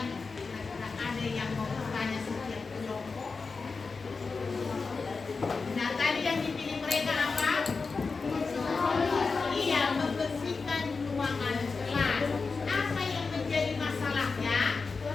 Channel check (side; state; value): right; quieter; 4.5 dB